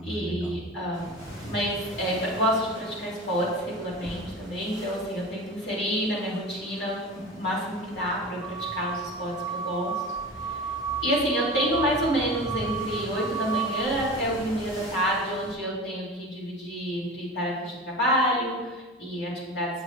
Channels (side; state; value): both; normal; correlation 0.32